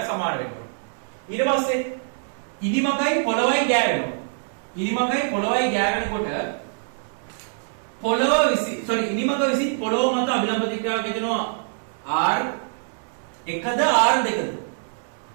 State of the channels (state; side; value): silent; left; 60 dB below the other